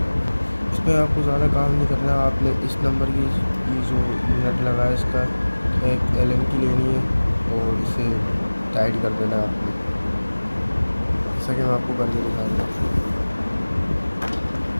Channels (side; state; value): both; inverted; correlation -1.00